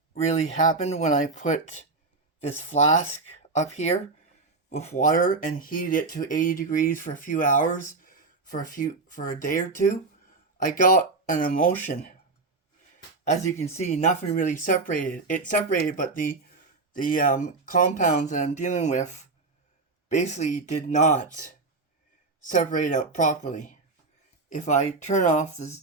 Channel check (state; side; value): quieter; left; 3.7 dB